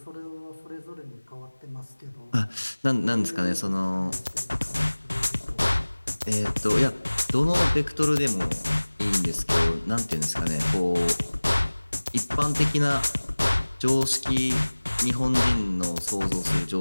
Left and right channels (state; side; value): inverted; both; correlation -1.00